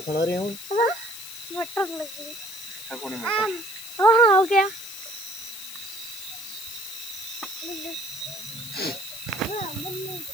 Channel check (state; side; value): noise; left; hiss, 11 dB below the sound